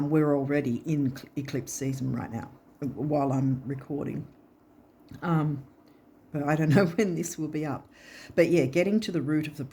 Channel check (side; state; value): both; identical; correlation 1.00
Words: already in eclipse season right now while I'm recording. But I don't know when this will be up. But yeah, getting to the root of the